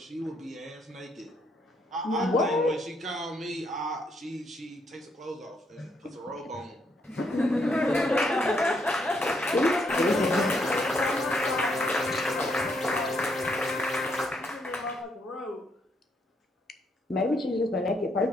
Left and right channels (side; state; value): both; normal; correlation 0.74